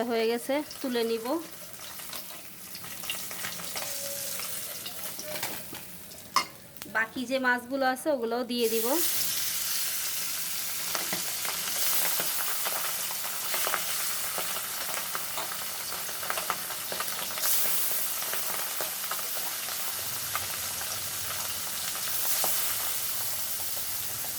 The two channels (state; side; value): identical; both; correlation 1.00